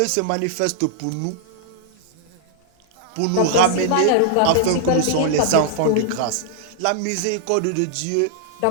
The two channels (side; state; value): both; different; correlation -0.01